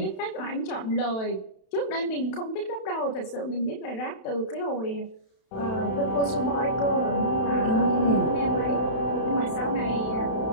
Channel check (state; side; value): late; right; 32 ms